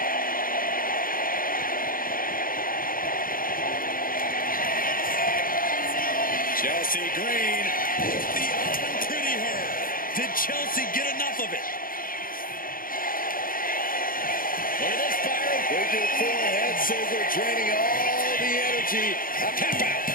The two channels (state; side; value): late; right; 0.41 ms